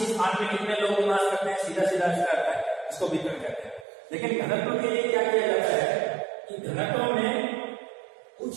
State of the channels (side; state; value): left; drops out; at 3.9 s